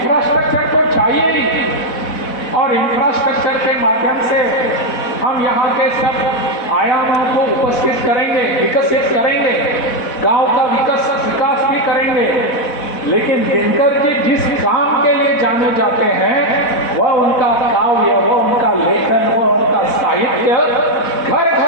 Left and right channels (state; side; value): late; right; 4.1 ms